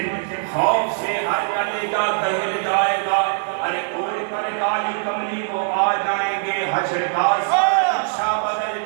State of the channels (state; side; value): silent; left; digital silence